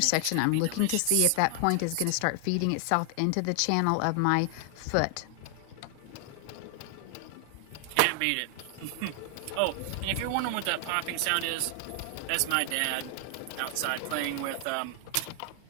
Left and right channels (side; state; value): both; different; correlation 0.00